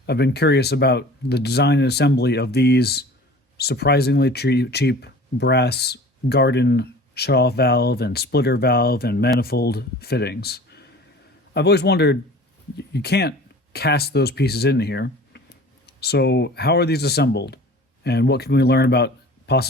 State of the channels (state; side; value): normal; both; correlation 0.43